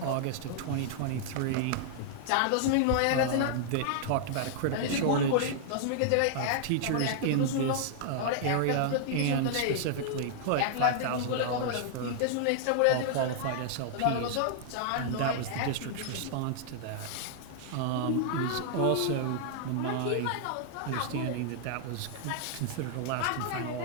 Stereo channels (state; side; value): different; both; correlation -0.01